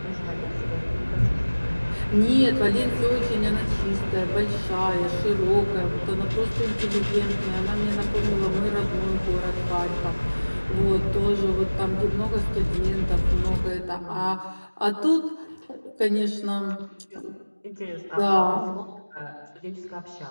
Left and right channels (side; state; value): both; inverted; correlation -1.00